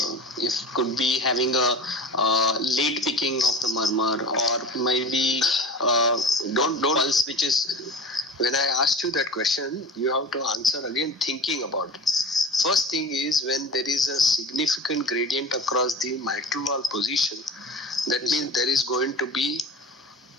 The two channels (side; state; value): both; normal; correlation 0.36